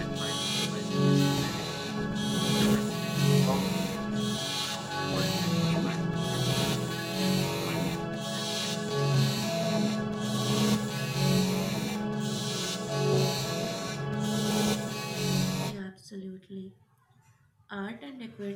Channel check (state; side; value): identical; both; correlation 1.00